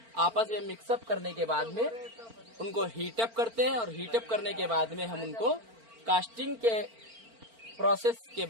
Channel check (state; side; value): late; left; 4.4 ms